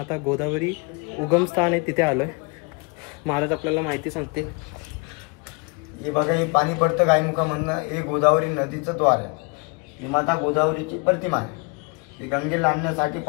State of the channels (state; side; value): quieter; right; 30.6 dB